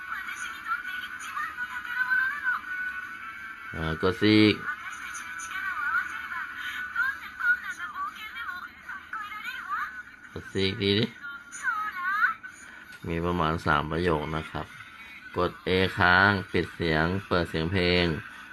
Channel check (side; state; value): both; identical; correlation 1.00